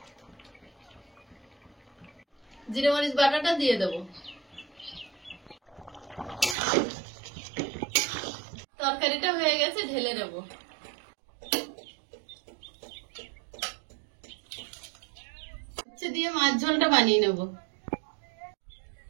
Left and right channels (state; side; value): drops out; left; at 6.6 s